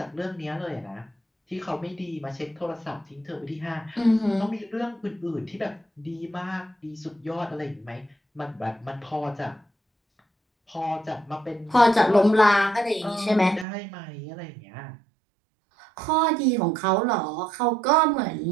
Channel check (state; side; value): drops out; left; at 13.7 s